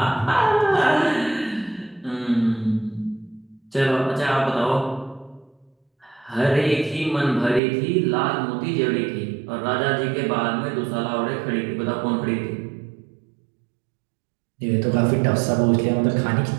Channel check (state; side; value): drops out; left; at 7.6 s